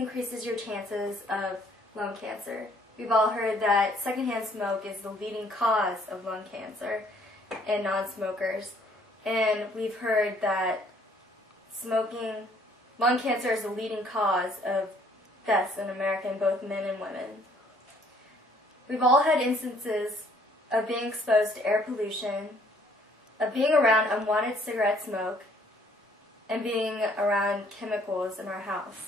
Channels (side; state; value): both; normal; correlation 0.62